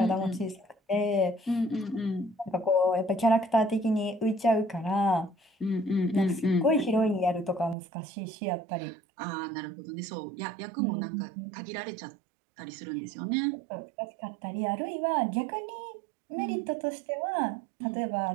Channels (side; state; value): left; drops out; at 7.8 s